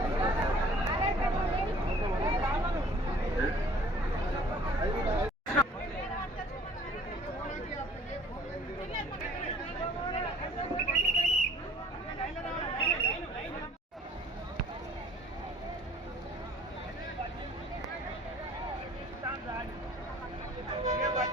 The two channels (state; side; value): normal; both; correlation 0.53